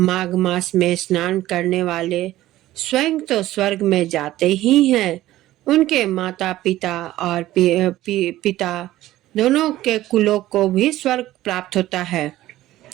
मास में स्नान करने वाले स्वयं तो स्वर्ग में जाते ही हैं, उनके माता पिता और पिता दोनों के कुलों को भी स्वर्ग प्राप्त होता है।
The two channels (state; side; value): quieter; left; 15.2 dB